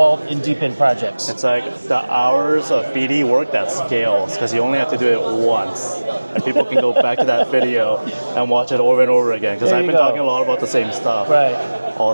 in DePIN projects. It's like the hours of BD work that scales, because you only have to do it once. And people can go back to that video and watch it over and over again, because I've been talking a lot about the same stuff all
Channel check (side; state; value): both; inverted; correlation -1.00